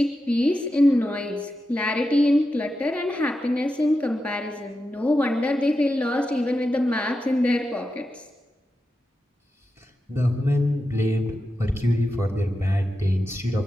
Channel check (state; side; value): normal; both; correlation 0.90